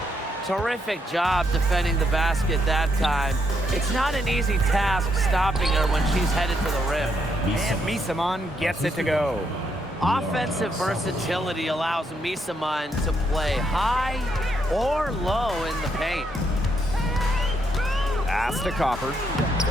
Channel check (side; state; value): both; normal; correlation 0.77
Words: Terrific job defending the basket that time. It's not an easy task stopping her when she's headed for the rim. And Misaman gets it to go. Offensive versatility allows Misaman to play high or low in the paint. Pass to Copper.